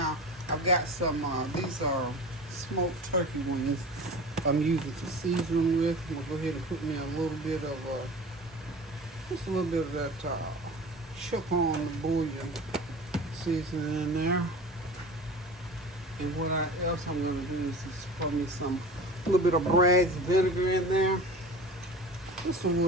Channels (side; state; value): both; normal; correlation 0.37